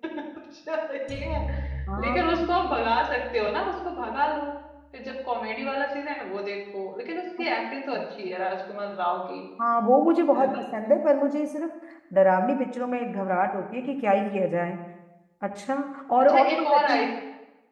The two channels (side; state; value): both; identical; correlation 1.00